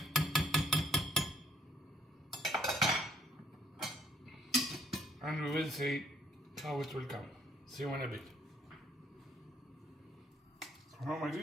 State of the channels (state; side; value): normal; both; correlation 0.65